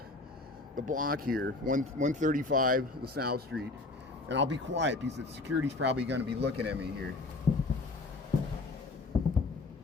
the block here, 135 LaSalle Street. And I'll be quiet because the security's probably going to be looking at me here.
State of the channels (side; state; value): right; quieter; 3.3 dB